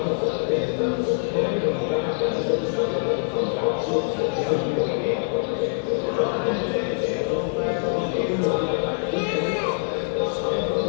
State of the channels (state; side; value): silent; right; 62 dB below the other